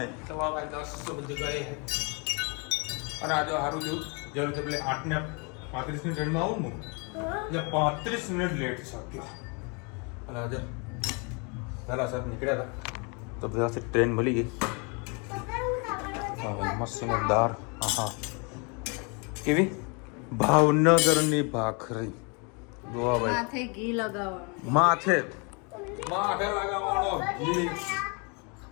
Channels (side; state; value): right; quieter; 33.0 dB